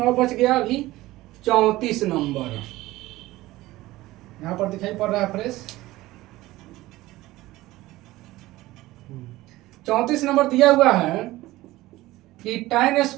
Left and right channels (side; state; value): left; quieter; 17.7 dB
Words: और बच गया अभी 34 नंबर, यहाँ पर दिखाई पड़ रहा है फ्रेश। 34 नंबर दिया हुआ है कि tan